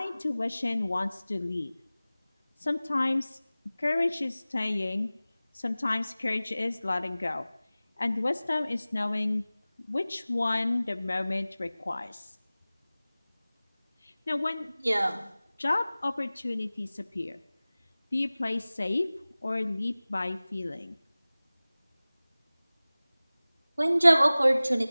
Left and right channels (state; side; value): inverted; both; correlation -0.98